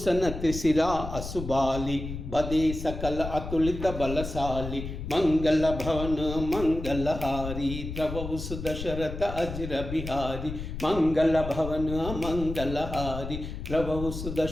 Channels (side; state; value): left; noise; rumble, 7 dB below the sound